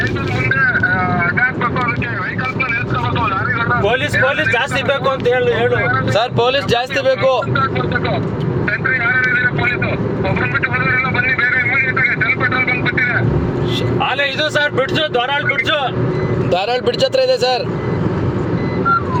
ಪೊಲೀಸ್ ಜಾಸ್ತಿ ಬೇಕು ಅಂತ ಹೇಳು ಸರ್. ಪೊಲೀಸ್ ಜಾಸ್ತಿ ಬೇಕು. ಅಲ್ಲೇ ಇದು ಸರ್ ಬಿಡ್ಸು, ಧಾರಾಳ್ ಬ್ರಿಡ್ಜ್ ಹತ್ರ ಇದೆ ಸರ್.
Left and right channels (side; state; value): both; identical; correlation 1.00